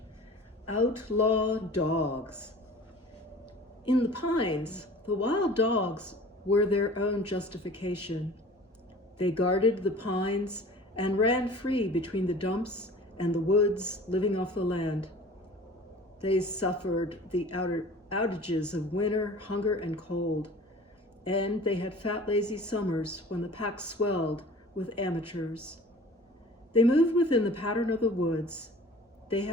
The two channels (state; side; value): normal; both; correlation 0.43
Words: Outlaw Dogs. In the pines, the wild dogs were their own justification. They guarded the pines and ran free between the dumps and the woods, living off the land. They suffered the outages of winter, hunger, and cold, and they had fat, lazy summers when the pack swelled with amateurs. They moved within the pattern of the woods. They